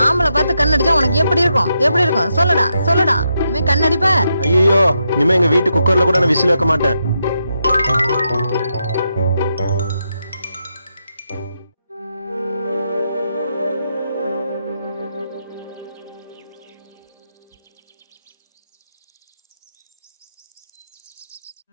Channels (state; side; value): inverted; both; correlation -0.82